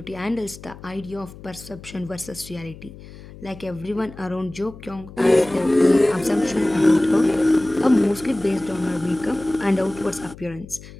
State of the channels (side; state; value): left; noise; hum, 17 dB below the sound